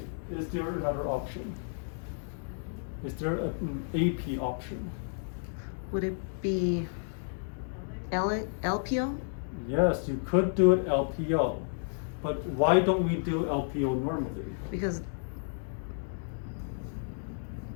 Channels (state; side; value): silent; right; digital silence